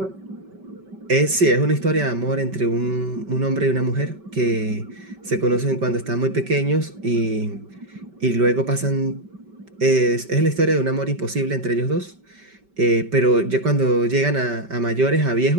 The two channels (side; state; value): left; late; 5.2 ms